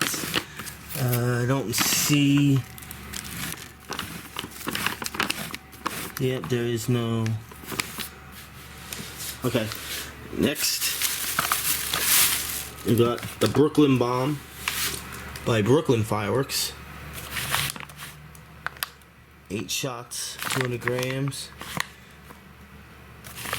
I don't see. Yep, there is no. Okay, next we got the Brooklyn Bomb by Brooklyn Fireworks. 8 shots, 200 grams.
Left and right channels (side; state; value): both; identical; correlation 1.00